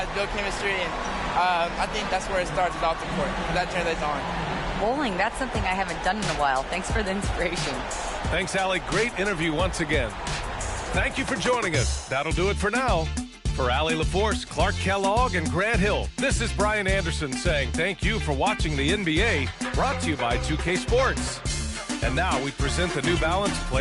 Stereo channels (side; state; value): both; identical; correlation 1.00